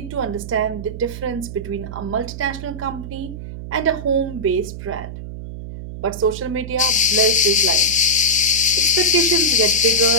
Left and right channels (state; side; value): noise; right; hum, 10 dB below the sound